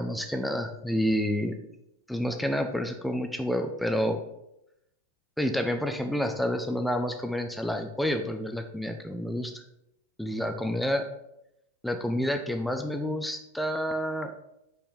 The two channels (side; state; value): both; normal; correlation 0.80